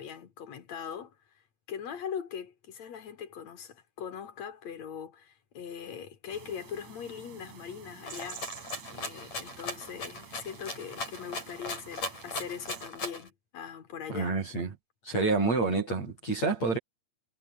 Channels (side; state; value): right; late; 8.7 ms